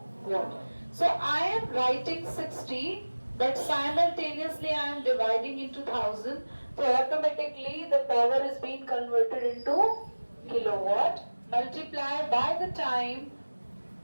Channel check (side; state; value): both; inverted; correlation -1.00